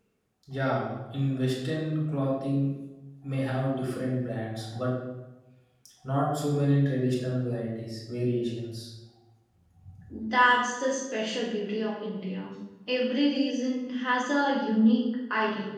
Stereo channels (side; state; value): both; identical; correlation 1.00